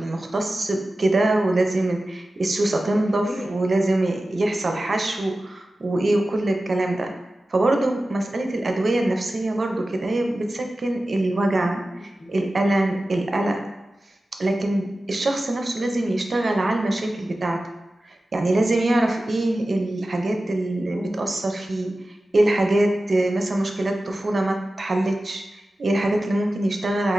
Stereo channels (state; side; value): normal; both; correlation 0.95